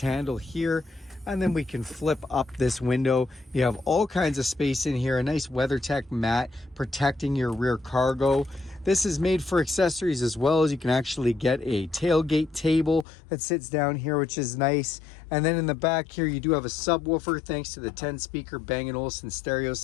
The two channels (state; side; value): drops out; right; at 13.1 s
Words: here, and then we can flip up this window. You have all kinds of space in here, a nice WeatherTech mat protecting your rear cargo. This is made for accessories as well, as you can actually get a tailgate table that sits down here, which is nice. And then in the back here, you do have a subwoofer thanks to the 10-speaker Bang & Olufsen stereo